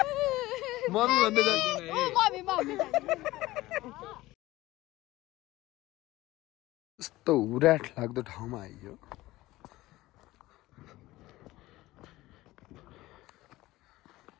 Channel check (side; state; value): right; quieter; 17.9 dB